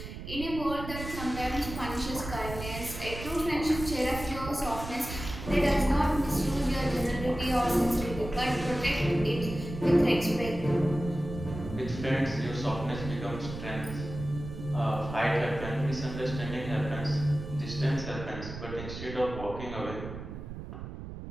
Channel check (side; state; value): right; noise; rumble, 9 dB below the sound